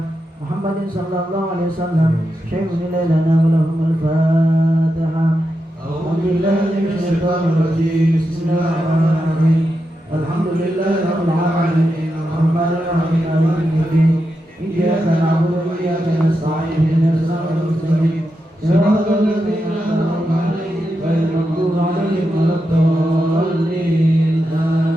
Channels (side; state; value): both; normal; correlation 0.87